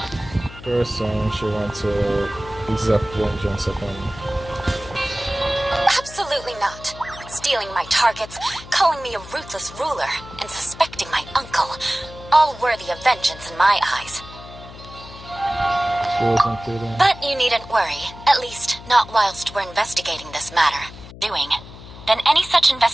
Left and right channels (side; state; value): left; noise; hum, 16 dB below the sound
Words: person she wants to exact vengeance upon. Absolutely not. Stealing my targets, calling me a ruthless ruler, and suspecting my uncle. All worthy of vengeance in my eyes. She wasn't kidding. But you needn't worry, at least not whilst we're investigating this matter. Then any such